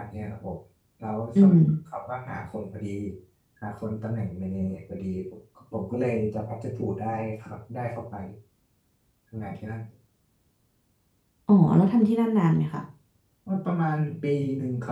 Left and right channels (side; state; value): both; identical; correlation 1.00